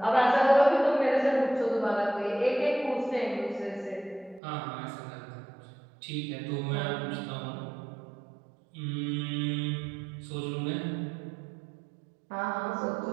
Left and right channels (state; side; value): drops out; left; at 4.4 s